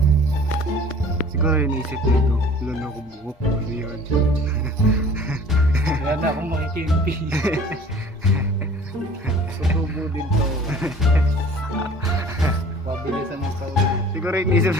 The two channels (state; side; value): normal; both; correlation 0.48